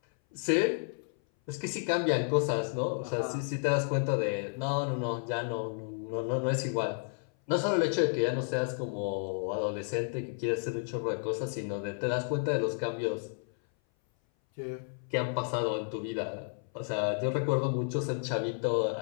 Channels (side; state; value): right; silent; 57 dB below the other